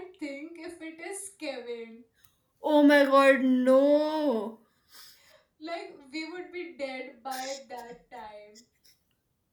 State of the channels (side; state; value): both; identical; correlation 1.00